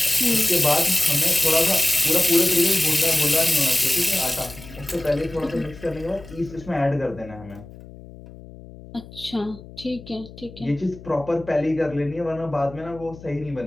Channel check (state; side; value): noise; left; hum, 18 dB below the sound